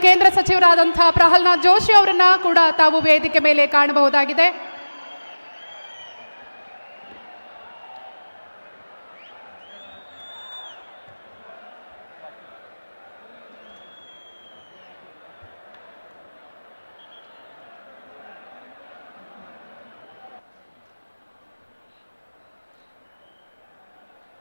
ಕೇಂದ್ರ ಸಚಿವರಾದಂತಹ ಪ್ರಹ್ಲಾದ್ ಜೋಶಿ ಅವರನ್ನ ಕೂಡ ತಾವು ವೇದಿಕೆ ಮೇಲೆ ಕಾಣಬಹುದಾಗಿದೆ.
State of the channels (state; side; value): inverted; both; correlation -1.00